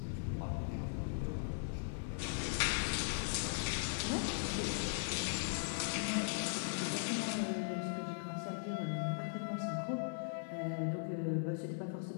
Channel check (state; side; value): silent; right; 52 dB below the other